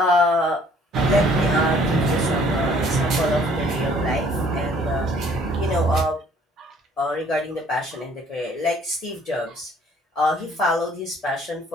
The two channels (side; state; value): both; normal; correlation 0.58